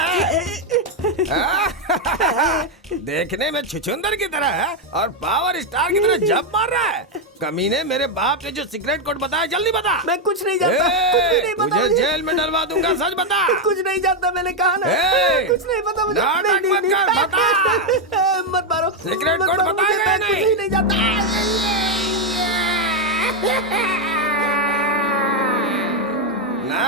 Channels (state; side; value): normal; both; correlation 0.04